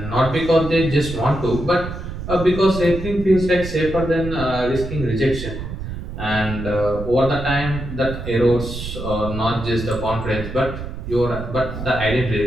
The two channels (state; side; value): noise; right; rumble, 8 dB below the sound